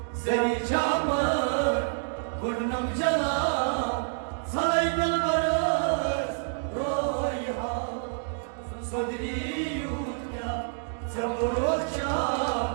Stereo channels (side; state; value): left; silent; digital silence